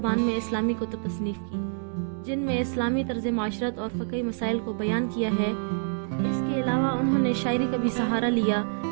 में इस्लामी कुतुब तसनीफ़ की, जिनमें इस्लामी तर्ज माशरत और फ़क़ही मसाइल को बयान किया है। इसके अलावा उन्होंने शायरी का भी सहारा लिया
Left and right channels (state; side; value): silent; left; digital silence